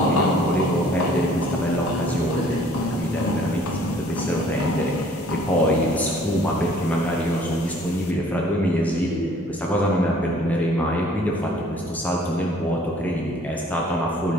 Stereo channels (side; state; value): both; normal; correlation 0.55